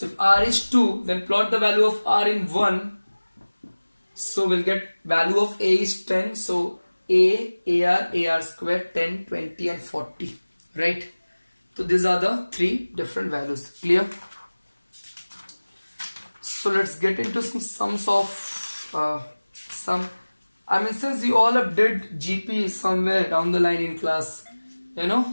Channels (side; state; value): both; inverted; correlation -1.00